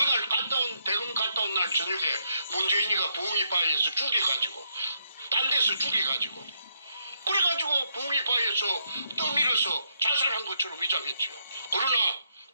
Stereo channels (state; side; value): inverted; both; correlation -0.76